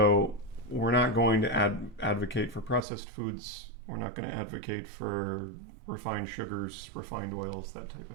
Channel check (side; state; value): left; drops out; at 2.8 s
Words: we're not going to advocate for processed foods. We're not going to advocate for refined sugars, refined oils, that type